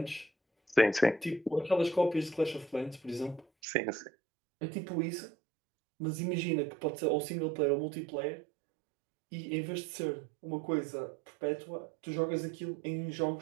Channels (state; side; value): drops out; left; at 3.5 s